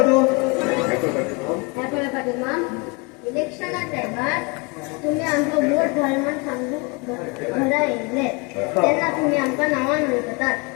इलेक्शनात टायमार तुम्ही आमचं वोट घालून सांगू घरा येयले तेन्ना तुम्ही आमकां नांवां म्हणटात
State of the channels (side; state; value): right; quieter; 29.4 dB